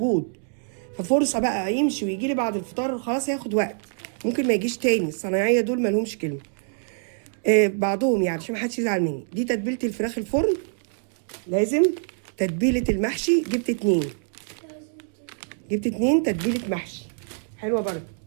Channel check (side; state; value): left; silent; digital silence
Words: ففرصه بقى يمشي ويجي لي بعد الفطار، خلاص هياخد وقت، ممكن ما يجيش تاني. الصنايعيه دول ما لهمش كلمه. بعضهم يعني عشان ما حدش يزعل مني. دي تتبيله الفراخ الفرن لازم. تتبيله المحشي جبت 2. جبت 2 تتبيله محشي حلوه برضه.